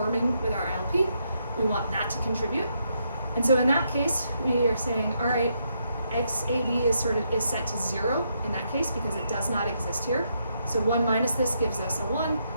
with our ILP, we want that to contribute. And so in that case, we are saying, all right, XAB is set to 0 in that case because it does not exist here. So 1 minus this gives us a 1.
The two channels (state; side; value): inverted; both; correlation -0.78